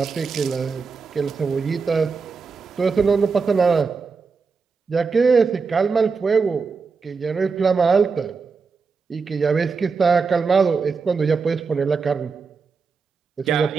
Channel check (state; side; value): quieter; left; 5.0 dB